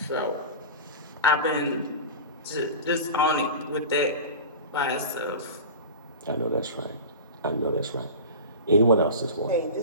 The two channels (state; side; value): inverted; both; correlation -0.31